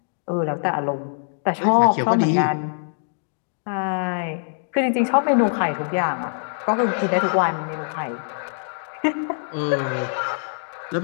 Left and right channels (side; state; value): right; silent; digital silence